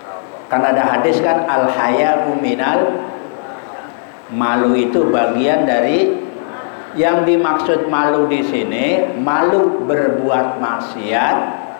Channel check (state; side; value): silent; right; digital silence